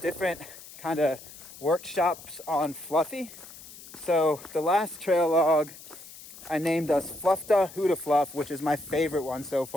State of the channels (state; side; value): noise; left; hiss, 17 dB below the sound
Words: kind of workshops on Fluffy. So the last trail log, I named us Fluffda Huda Fluff, which is my favorite one so